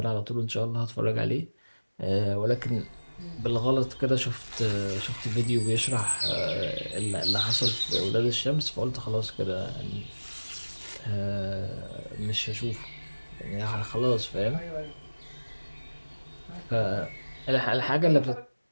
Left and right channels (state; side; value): inverted; both; correlation -1.00